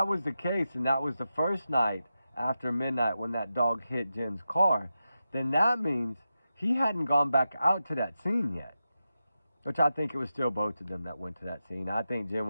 was the case, and that was the first night after midnight when that dog hit Jen's car, then that means he hadn't gone back out to that scene yet. Which I think it was still both of them that went to that scene. I think Jen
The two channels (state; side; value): inverted; both; correlation -0.90